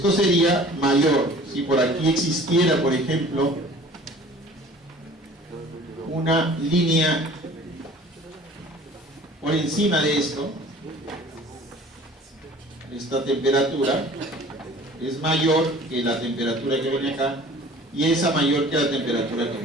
sería mayor. Si por aquí existiera, por ejemplo, una línea por encima de esto, esta temperatura es mayor que la temperatura que viene acá, y esa mayor que la temperatura que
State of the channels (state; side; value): normal; both; correlation 0.47